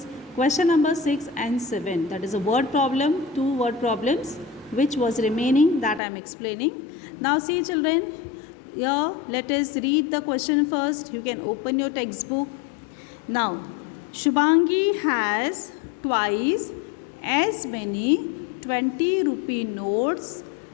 question number 6 and 7. That is a word problem, two word problems which was remaining that I am explaining. Now see children, here let us read the question first. You can open your textbook. Now Shubhangi has twice as many 20 rupee notes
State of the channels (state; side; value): drops out; right; at 6.0 s